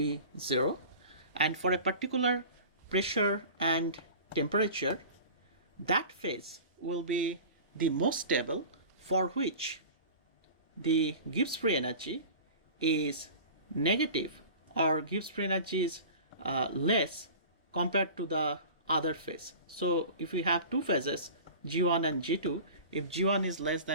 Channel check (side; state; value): both; inverted; correlation -0.38